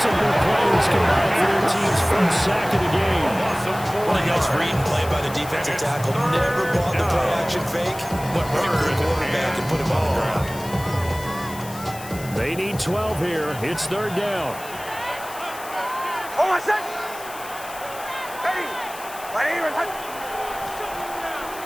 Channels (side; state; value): left; noise; hiss, 15 dB below the sound